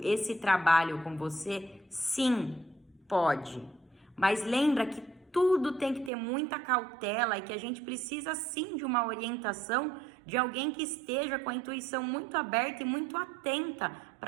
esse trabalho com você, sim, pode. Mas lembra que tudo tem que ter muita cautela e que a gente precisa sim de uma orientação de alguém que esteja com a intuição muito aberta e muito atenta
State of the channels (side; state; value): left; drops out; at 6.1 s